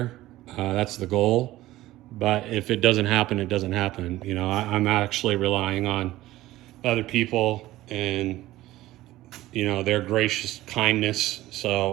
That's the goal. But if it doesn't happen, it doesn't happen. You know, I'm actually relying on other people and, you know, their gracious kindness.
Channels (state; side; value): quieter; left; 16.2 dB